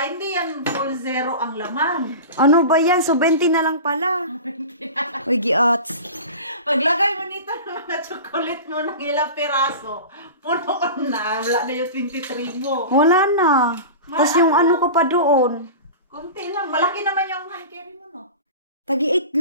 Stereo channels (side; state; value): both; inverted; correlation -0.33